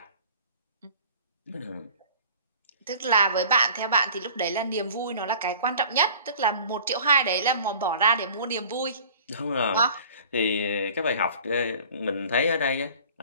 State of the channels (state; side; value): inverted; both; correlation -0.46